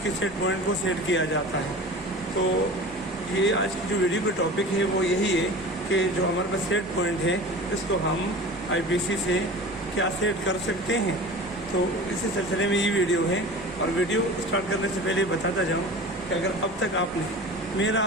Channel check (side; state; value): both; normal; correlation 0.36